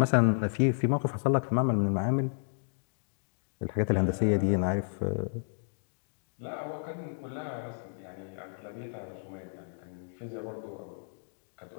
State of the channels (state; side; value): silent; right; digital silence